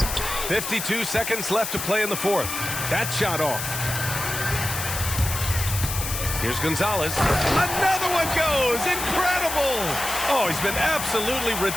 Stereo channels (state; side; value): noise; left; hiss, 5 dB below the sound